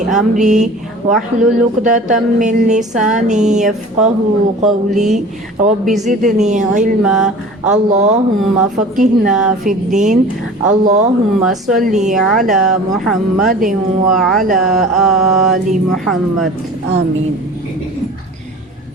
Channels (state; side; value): normal; both; correlation 0.41